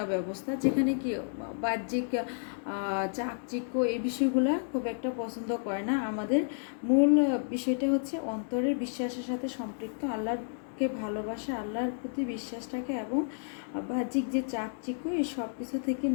ব্যবস্থা, যেখানে কি বাহ্যিক চাকচিক্য এই বিষয়গুলো খুব একটা পছন্দ করে না। আমাদের মূল বিষয়টা হচ্ছে অন্তরের বিশ্বাসের সাথে সম্পৃক্ত, আল্লাহর আল্লাহকে ভালোবাসা, আল্লাহর প্রতি বিশ্বাসটাকে এবং বাহ্যিক যে চাকচিক্য এই সব কিছু থেকে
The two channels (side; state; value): right; silent; digital silence